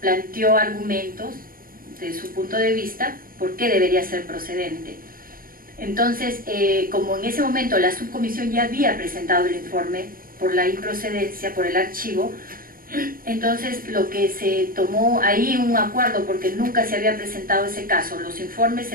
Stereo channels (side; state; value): left; late; 0.42 ms